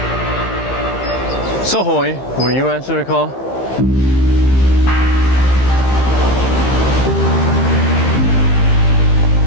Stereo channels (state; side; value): late; right; 15 ms